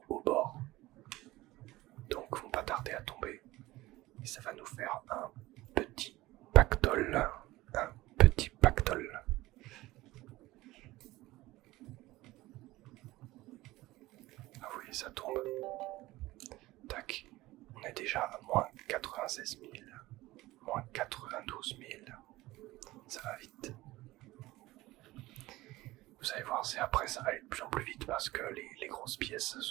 au bord. Donc vont pas tarder à tomber. Et ça va nous faire un petit pactole. Un petit pactole. Ah oui, ça tombe. Tac. On est déjà à moins 96 000. Moins 92 000. Ça va vite. Vous allez voir, c'est après ça va aller de plus en plus vite parce que les grosses pièces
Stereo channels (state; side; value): quieter; left; 18.2 dB